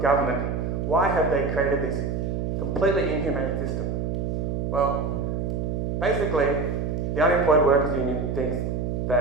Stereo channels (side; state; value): right; noise; hum, 1 dB below the sound